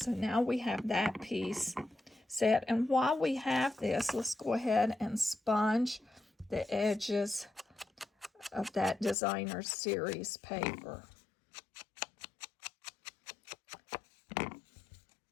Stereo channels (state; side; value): drops out; right; at 9.2 s